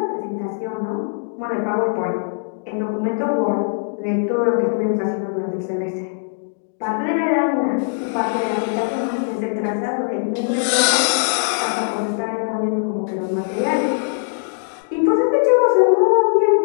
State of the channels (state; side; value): silent; right; digital silence